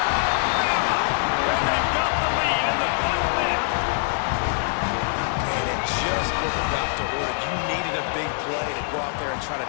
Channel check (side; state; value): right; silent; 63 dB below the other